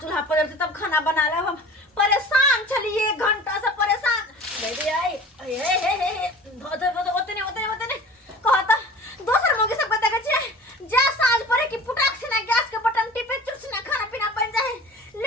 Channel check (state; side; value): normal; both; correlation 0.41